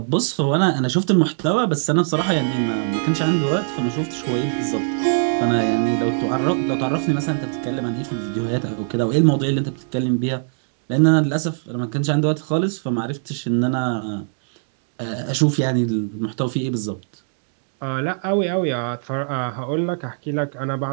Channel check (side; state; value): left; silent; digital silence